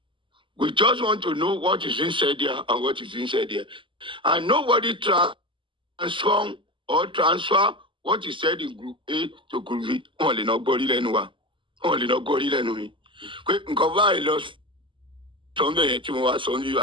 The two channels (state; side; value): late; left; 0.25 ms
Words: We just want to know what is inside there and what is inside there. And nobody transfer what is said in group A to group B. Only not body lenua. Only not body lenui. Nkoba lost something to was only